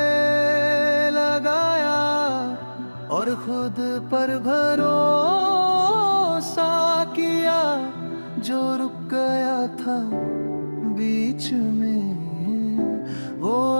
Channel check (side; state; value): both; inverted; correlation -1.00